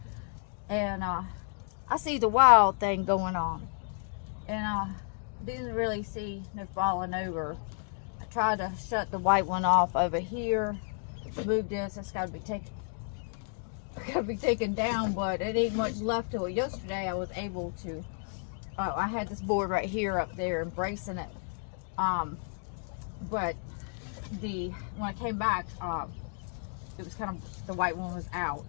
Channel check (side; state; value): right; silent; 57 dB below the other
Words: And I see the wild thing going on. And I didn't really see no falling over. I tried to shut the white one off over here. Move this. It's got to be taken down, but it ain't much left to it. Yesterday I was able to, I had this board right here up there embracing it. But when I came back, it was kind of, the white one was out.